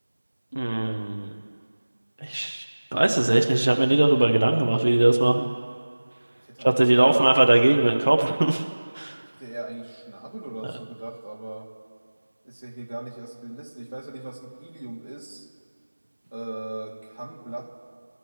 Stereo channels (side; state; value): both; inverted; correlation -1.00